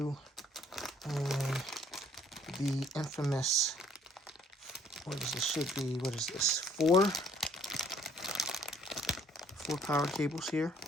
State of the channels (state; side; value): normal; both; correlation 0.61